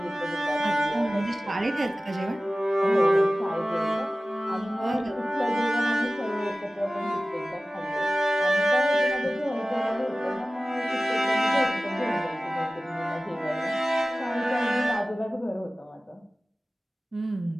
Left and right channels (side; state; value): both; normal; correlation 0.97